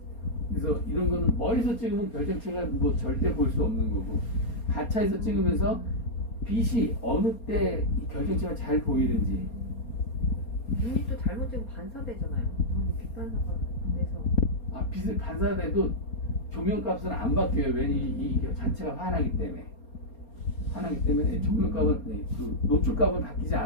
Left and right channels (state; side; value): late; right; 4.3 ms